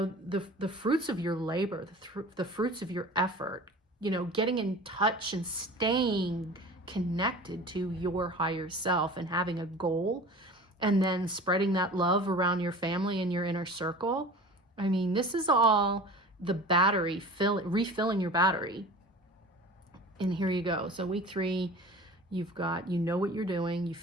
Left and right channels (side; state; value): both; normal; correlation 0.39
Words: fruits of your labor, the fruits of your effort, getting in touch and staying connected to your higher self and having a goal and then spreading that love around your family and your inner circle. This is all the battery, refilling your battery. And here you go. So week 3, You've got, you know what you're doing, you